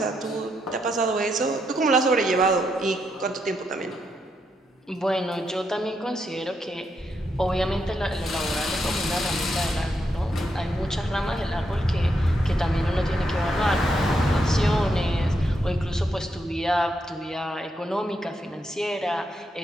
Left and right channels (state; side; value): normal; both; correlation 0.80